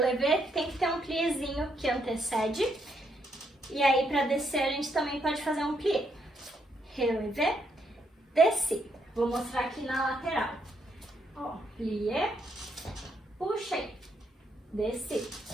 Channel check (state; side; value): normal; both; correlation 0.75